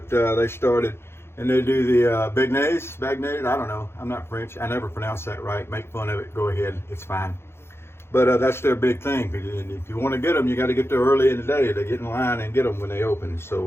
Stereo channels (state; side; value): late; right; 0.12 ms